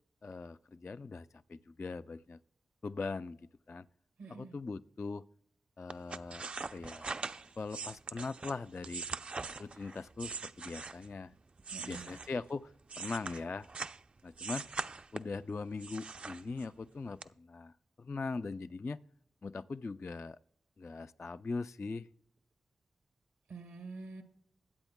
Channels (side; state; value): both; normal; correlation 0.78